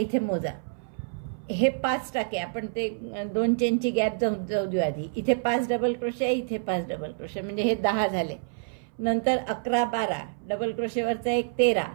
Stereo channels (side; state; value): left; silent; 60 dB below the other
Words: मोजा, हे 5 टाके आपण ते 2 चेनची गॅप जाऊ देऊ आधी. इथे 5 डबल क्रोशे, इथे 5 डबल क्रोशे, म्हणजे हे 10 झाले. नंतर 11 12 डबल क्रोशेवरचा एक 13,